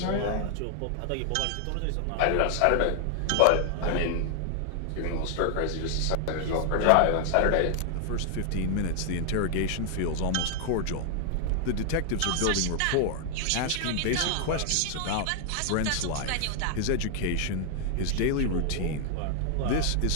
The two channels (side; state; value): both; different; correlation 0.00